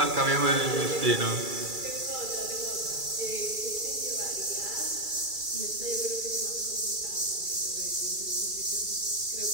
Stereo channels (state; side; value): late; left; 2.3 ms